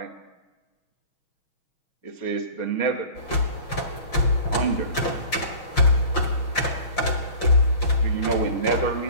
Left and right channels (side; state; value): right; late; 5.8 ms